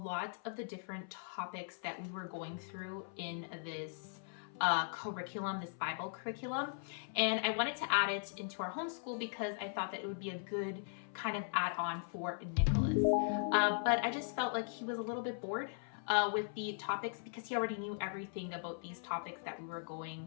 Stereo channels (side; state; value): right; silent; 52 dB below the other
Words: of the different topics that we were going through in this curriculum, this Bible curriculum, and I wanted to add it into our homeschool because I thought that it would be a good kind of add-on for Nicholas. But I just felt like he was a little bit bored with the topics because he already knew everything about these topics that we were